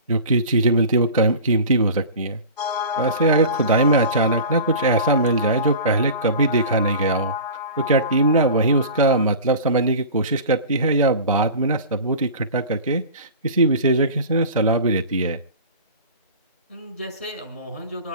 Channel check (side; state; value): both; inverted; correlation -0.37